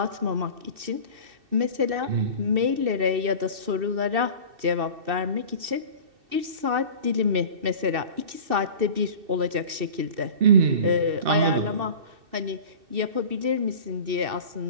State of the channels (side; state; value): left; late; 2.6 ms